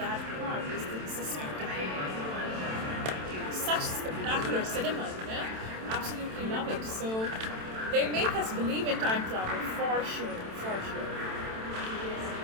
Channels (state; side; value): late; left; 27 ms